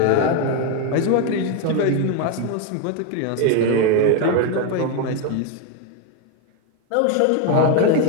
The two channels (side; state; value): both; different; correlation 0.01